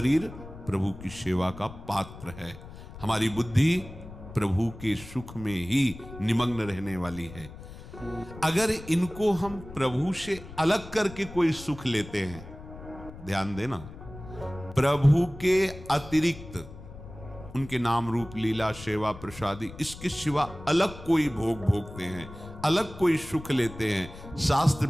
प्रभु की सेवा का पात्र है। हमारी बुद्धि प्रभु के सुख में ही निमग्न रहने वाली है। अगर इनको हम प्रभु से अलग करके कोई सुख लेते हैं, ध्यान देना, प्रभु के अतिरिक्त उनके नाम रूप लीला सेवा प्रसादी इसके सिवा अलग कोई भोग भोगते हैं, अलग कोई सुख लेते हैं, शास्त्र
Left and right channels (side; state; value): left; noise; rumble, 15 dB below the sound